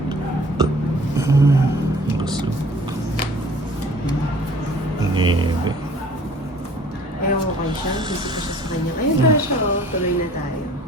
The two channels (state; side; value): normal; both; correlation 0.51